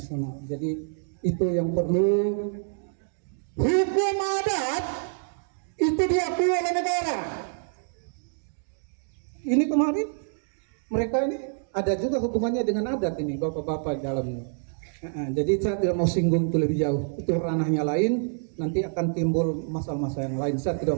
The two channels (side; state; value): left; silent; digital silence